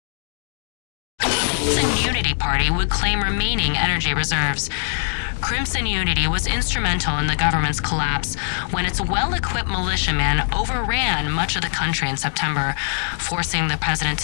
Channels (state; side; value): silent; right; digital silence